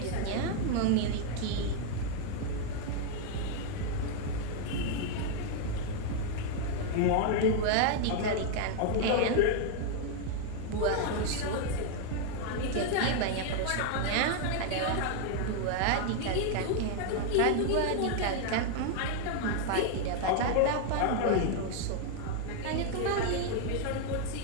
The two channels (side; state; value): both; different; correlation 0.00